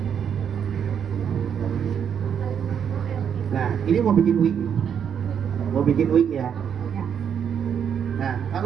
Nah, ini mau bikin wig. Mau bikin wig ya. Ya. Nah,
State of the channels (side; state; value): left; quieter; 8.0 dB